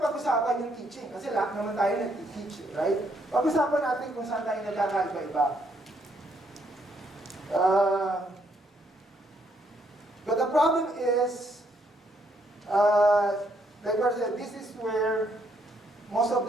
yung teaching, kasi lahat naman tayo nag-teach, right? Pag-usapan natin kung saan tayo nagkakaiba-iba. But the problem is, like I said, this is where most of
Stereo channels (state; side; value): normal; both; correlation 0.72